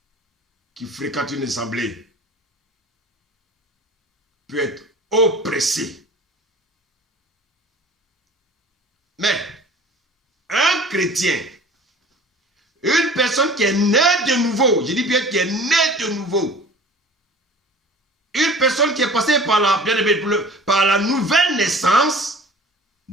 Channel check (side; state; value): both; normal; correlation 0.44